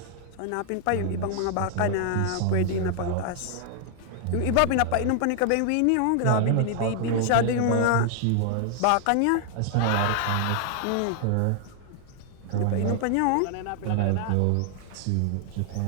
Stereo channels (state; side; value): different; both; correlation 0.00